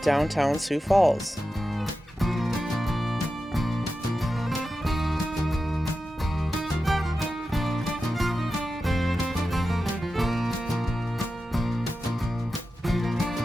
downtown Sioux Falls.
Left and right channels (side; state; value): both; normal; correlation 0.91